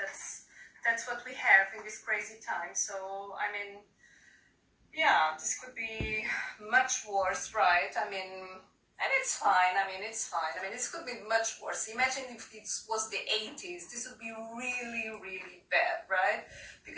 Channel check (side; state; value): both; identical; correlation 1.00